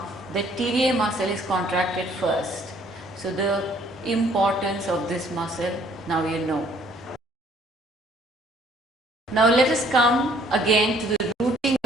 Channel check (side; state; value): both; normal; correlation 0.61